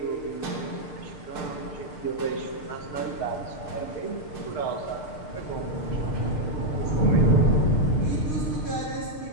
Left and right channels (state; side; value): late; right; 6.7 ms